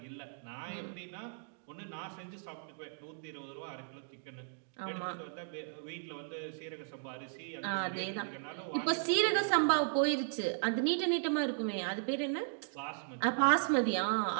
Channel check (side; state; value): left; silent; digital silence